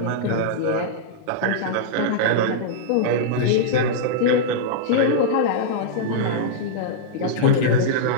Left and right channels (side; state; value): both; different; correlation -0.03